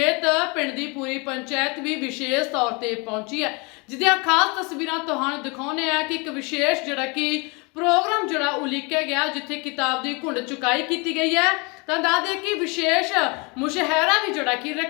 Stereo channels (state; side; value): quieter; right; 29.5 dB